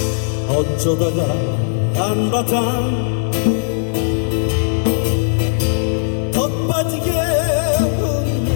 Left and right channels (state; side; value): silent; right; 62 dB below the other